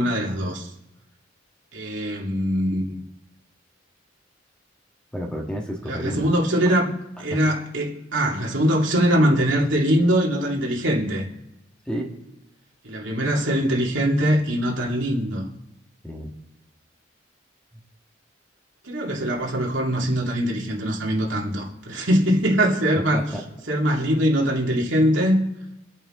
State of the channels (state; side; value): normal; both; correlation 0.65